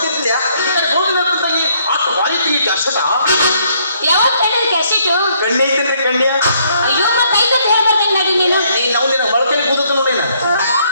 ತಂಗಿ ಅಷ್ಟು ಬಾರಿ ತಿಂಗಿ ಕೆಸಟ ಯಾವತ್ತು ಕಣ್ಣಿನ ಕ್ಯಾಶೆಟು ಕಣ್ಣಿ ಐತೇನ್ರಿ ಕಣ್ಣಿಯ ಅಯ್ಯೋ ಮತ್ತೆ ಐದತ್ತು ಹೇಳ್ಬರ್ತೇನೆ ನಡಿ ನೀನು ನಾವು ನಿನ್ನ ಮೊಳಕೆಲಿ ಕೂದತ್ತು ನೋಡಿ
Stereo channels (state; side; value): inverted; both; correlation -0.68